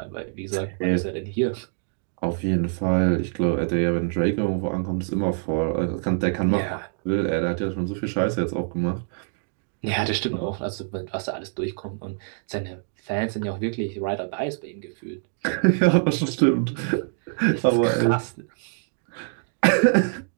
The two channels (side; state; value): left; silent; digital silence